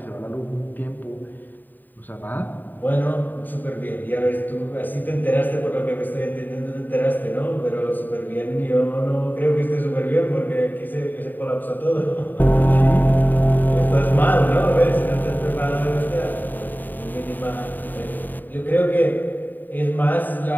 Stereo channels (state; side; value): late; right; 0.089 ms